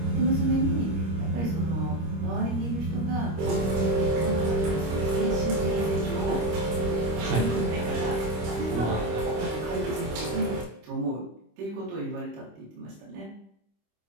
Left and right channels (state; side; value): late; left; 26 ms